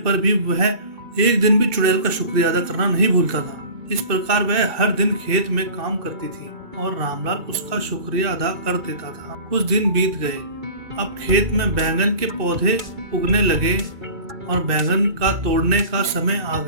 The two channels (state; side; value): late; left; 2.3 ms